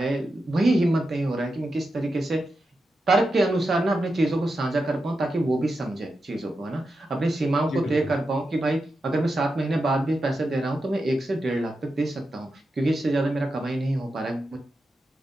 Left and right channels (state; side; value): normal; both; correlation 0.89